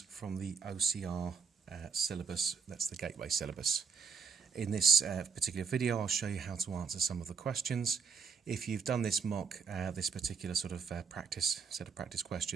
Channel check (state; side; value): quieter; left; 5.8 dB